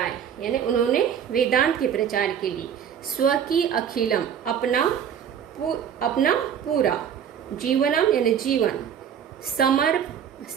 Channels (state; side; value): quieter; left; 8.5 dB